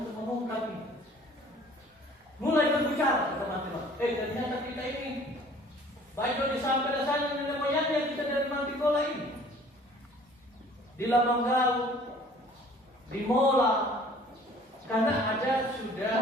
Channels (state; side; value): normal; both; correlation 0.52